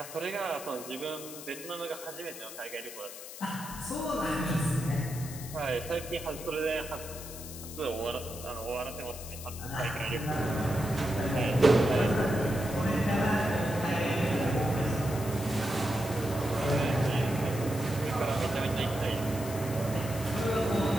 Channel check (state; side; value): noise; left; hiss, 12 dB below the sound